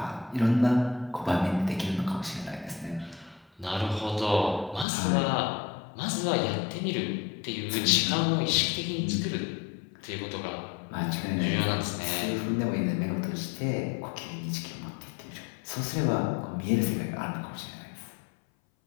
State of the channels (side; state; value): right; drops out; at 4.9 s